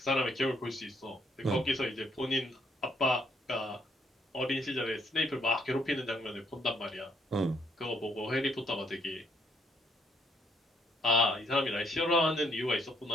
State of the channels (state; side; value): normal; both; correlation 0.69